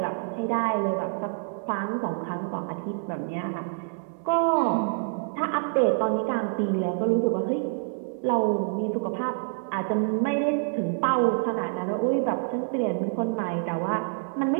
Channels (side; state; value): left; silent; digital silence